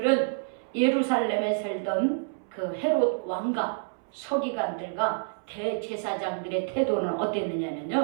예루살렘에 살던 그 헤롯 왕과 서기관들과 대제사장들의 태도는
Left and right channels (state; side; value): silent; left; 59 dB below the other